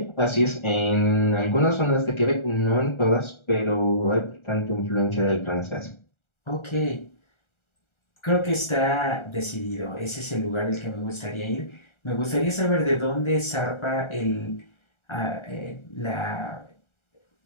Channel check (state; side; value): late; right; 1.4 ms